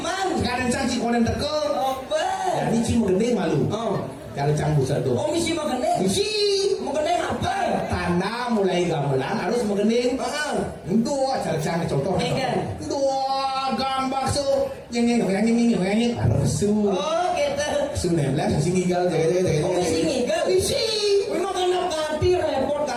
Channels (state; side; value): identical; both; correlation 1.00